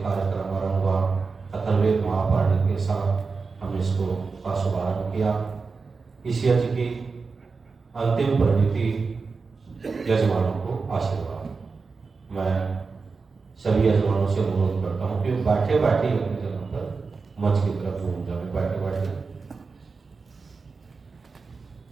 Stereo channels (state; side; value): quieter; left; 4.6 dB